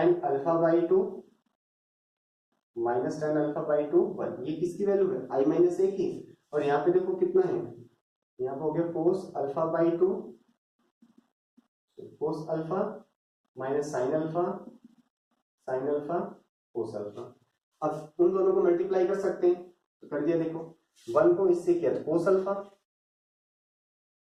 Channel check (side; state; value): both; identical; correlation 1.00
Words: alpha by to minus 10 alpha by to 1, ये किसकी वैल्यू है i माइनस ए की। और यहाँ पे देखो कितना है, यहाँ पे हो गया कोस alpha by to cos alpha minus sine alpha cos alpha. अब उन दोनों को मल्टीप्लाई कर सकते हैं तो कर दिया। देखो 1 को इससे किया तो कोस अल्फा